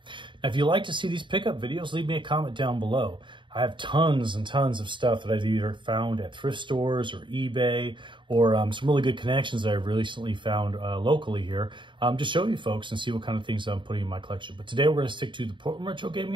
Now, if you like to see these pickup videos, leave me a comment down below. I have tons and tons of stuff that I've either found at thrift stores or eBay or some really good connections that I've recently found locally here to show you folks and see what kind of things I'm putting in my collection. But today we're going to stick to the Portland Retro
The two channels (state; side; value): late; left; 0.23 ms